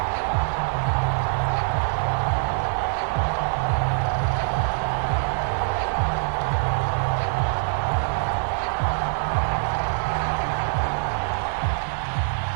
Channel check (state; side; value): silent; left; 63 dB below the other